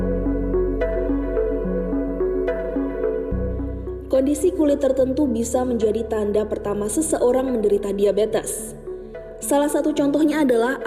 Kondisi kulit tertentu bisa menjadi tanda pertama seseorang menderita diabetes. Salah satu contohnya adalah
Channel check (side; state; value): both; identical; correlation 1.00